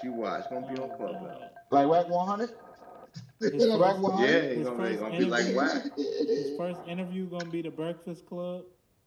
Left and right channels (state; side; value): identical; both; correlation 1.00